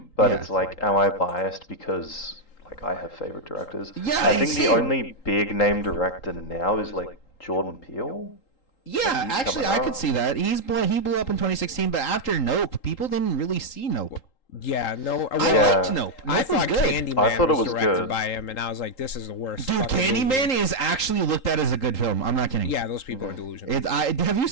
but Yeah. it's like, am I biased because like I have favorite directors? Yeah, I think same. the only big name director now is like Jordan Peele. Yeah, he's actually, coming I could out. see that. He blew up in 2016, but after Nope, people didn't really see Nope. Yeah, no. I Yeah. liked Nope. I Nope was thought good. Candyman I thought it was was directed good. by him, and I was like, this is the worst. Dude, fucking Candyman movie. is actually looked at as a good film. I'm not kidding. Yeah, those people are delusional. Have you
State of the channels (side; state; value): right; late; 3.8 ms